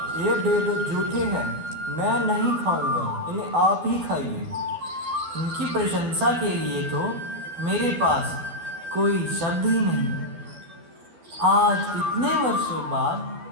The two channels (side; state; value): left; late; 12 ms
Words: ये बेर झूठे हैं, मैं नहीं खाऊंगा, इन्हें आप ही खाइए। उनकी प्रशंसा के लिए तो मेरे पास कोई शब्द ही नहीं। आज इतने वर्षों बाद